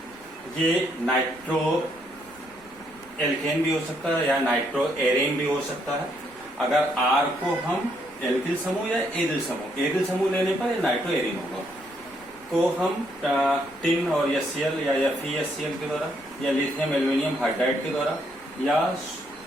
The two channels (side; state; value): left; noise; rumble, 26 dB below the sound